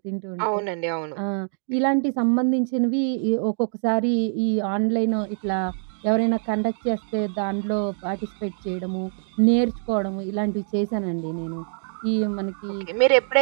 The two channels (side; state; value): left; silent; digital silence